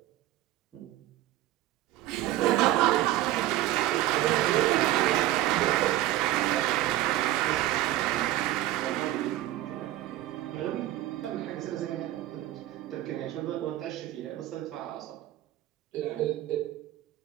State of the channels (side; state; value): left; quieter; 14.8 dB